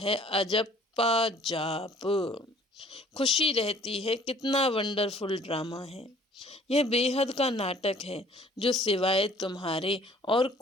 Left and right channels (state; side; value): normal; both; correlation 0.54